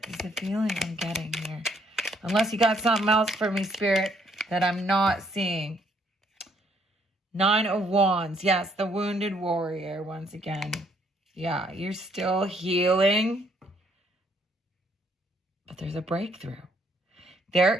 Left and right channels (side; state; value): both; normal; correlation 0.68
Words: is the feeling I'm getting here. Unless you got something else for me, Spirit, that I'm not seeing. Nine of Wands. Yes, the wounded warrior once again. Yeah, you're still healing. But there's a breakthrough. There